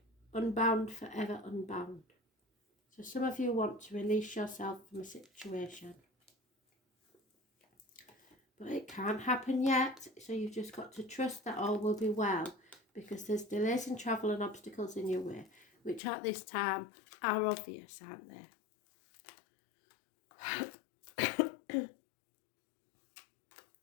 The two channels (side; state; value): right; drops out; at 16.0 s